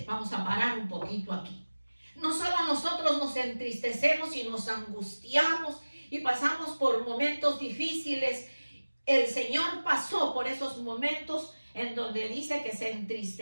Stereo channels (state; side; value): inverted; both; correlation -1.00